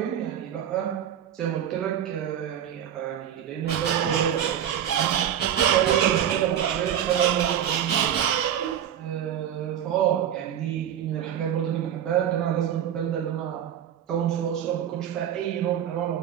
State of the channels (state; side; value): quieter; left; 9.9 dB